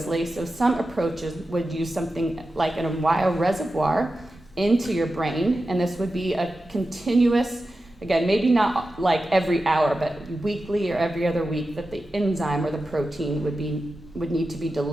so some approaches would use something like a wire reservoir into your brain, and this would be a continuous, again, maybe not like every hour, but weekly or every other week, that the enzyme or the protein would need to be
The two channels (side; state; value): both; normal; correlation 0.92